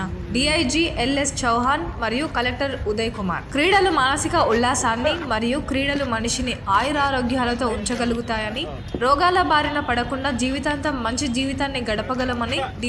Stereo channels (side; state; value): both; identical; correlation 1.00